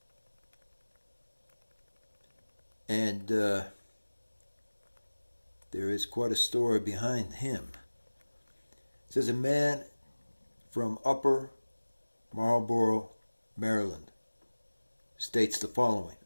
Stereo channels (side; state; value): both; inverted; correlation -1.00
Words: And there is quite a story behind him. It says a man from Upper Marlboro, Maryland, states the following.